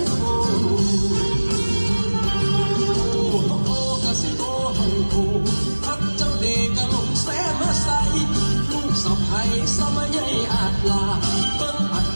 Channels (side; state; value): both; inverted; correlation -1.00